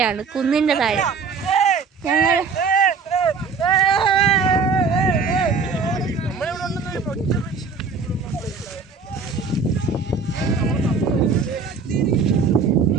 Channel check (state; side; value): quieter; left; 5.0 dB